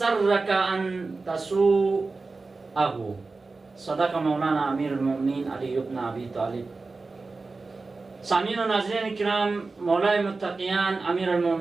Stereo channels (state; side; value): quieter; left; 3.8 dB